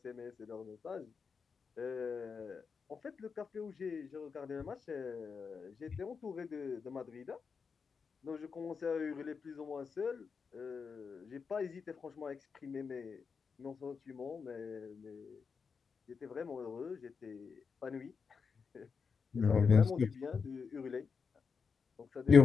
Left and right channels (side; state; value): right; quieter; 5.6 dB